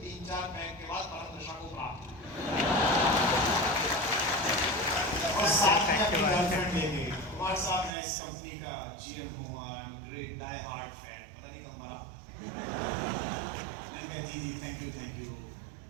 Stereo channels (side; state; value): left; drops out; at 7.9 s